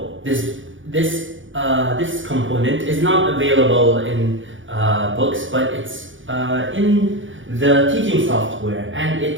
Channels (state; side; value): late; left; 0.56 ms